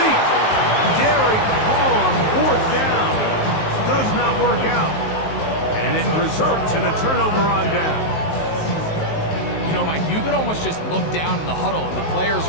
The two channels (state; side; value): late; right; 19 ms